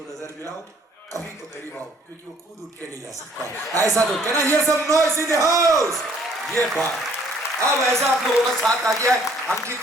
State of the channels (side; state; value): both; normal; correlation 0.60